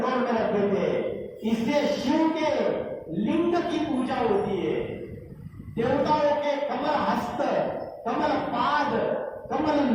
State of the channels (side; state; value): both; identical; correlation 1.00